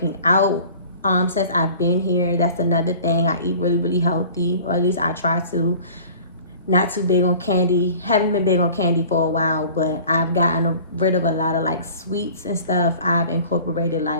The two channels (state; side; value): inverted; both; correlation -0.45